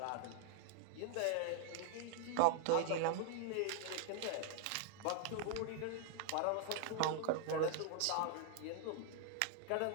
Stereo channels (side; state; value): both; different; correlation -0.01